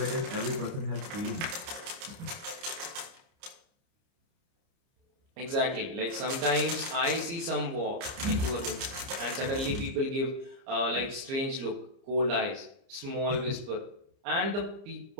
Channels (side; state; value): left; late; 30 ms